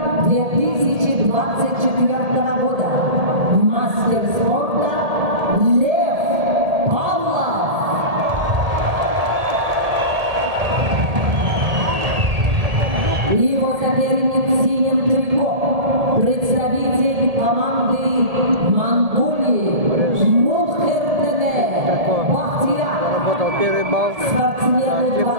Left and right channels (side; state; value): left; late; 1.8 ms